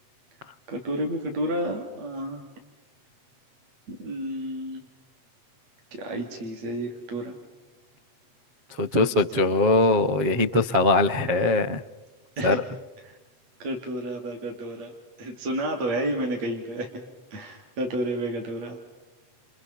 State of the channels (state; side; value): late; left; 7.5 ms